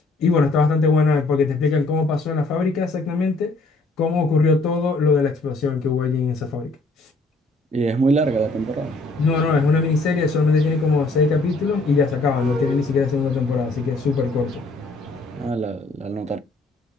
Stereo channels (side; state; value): right; quieter; 3.1 dB